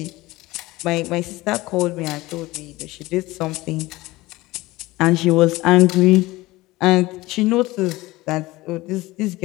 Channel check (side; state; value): right; quieter; 19.5 dB